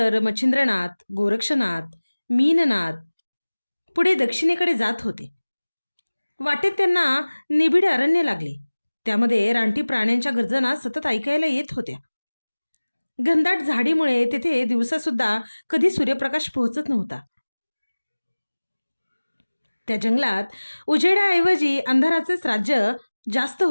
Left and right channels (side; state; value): both; inverted; correlation -1.00